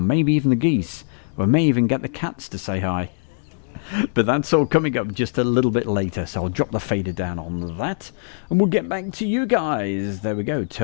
Maybe even the geese. We may even get the cats to say hi. But that's all coming up just a little bit later, so I'll drop the fader down on that, and we'll get back to you guys. There we go,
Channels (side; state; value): right; silent; digital silence